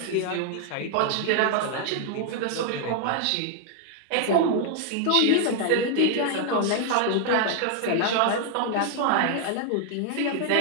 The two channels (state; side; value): different; both; correlation 0.00